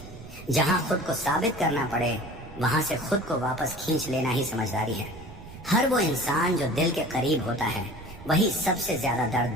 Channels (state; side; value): noise; right; rumble, 16 dB below the sound